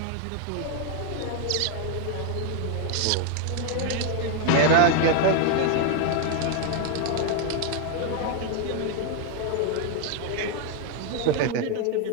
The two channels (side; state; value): both; different; correlation 0.00